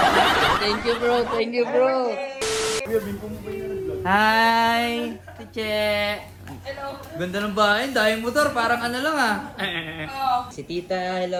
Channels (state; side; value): identical; both; correlation 1.00